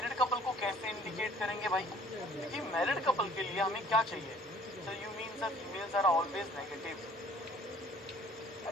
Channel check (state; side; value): normal; both; correlation 0.55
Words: कपल को कैसे इंडिकेट करेंगे भाई? क्योंकि मैरिड कपल के लिए हमें क्या चाहिए? So you mean that females are always negative?